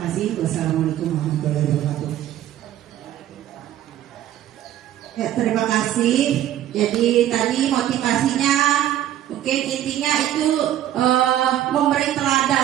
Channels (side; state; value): left; quieter; 12.1 dB